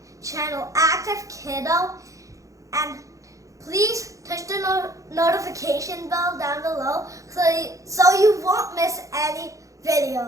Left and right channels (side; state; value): left; late; 0.16 ms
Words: channel, Active Kiddo. And please touch the notification bell down below so you won't miss any